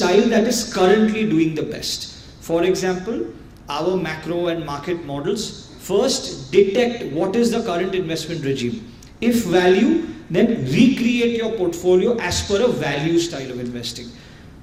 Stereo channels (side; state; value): both; identical; correlation 1.00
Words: that is currently doing the best. For example, our macro and market models first detect what is the current investment regime. If value, then recreate your portfolio as per a value style of investing.